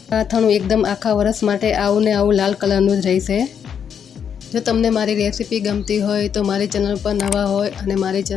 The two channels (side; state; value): right; quieter; 7.8 dB